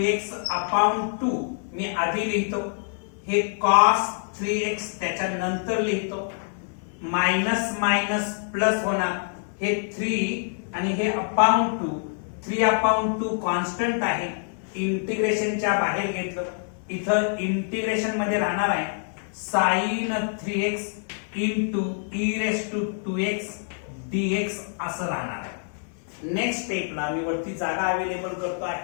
upon 2 मी आधी लिहितो हे cos 3x त्याच्या नंतर लिहितो मायनस मायनस प्लस होणार हे 3 आणि हे अपॉन 2 3 अपॉन 2 कॉन्स्टंट आहे इंटिग्रेशनच्या बाहेर घेतलं इथं इंटिग्रेशन मध्ये राहणार आहे sin 3x into e raise to 2x dx असं राहणार आहे नेक्स्ट स्टेपला मी वरती जागा अवेलेबल करतो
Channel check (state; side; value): silent; right; 61 dB below the other